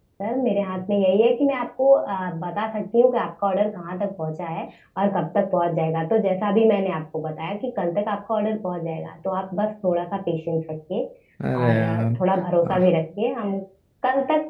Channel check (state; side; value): identical; both; correlation 1.00